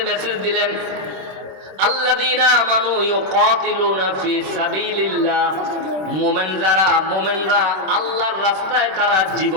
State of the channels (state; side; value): late; left; 26 ms